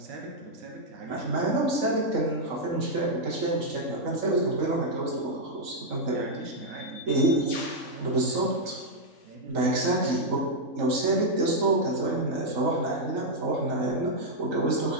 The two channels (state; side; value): late; left; 3.8 ms